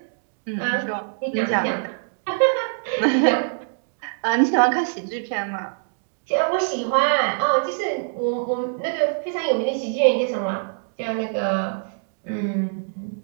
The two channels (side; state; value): left; silent; digital silence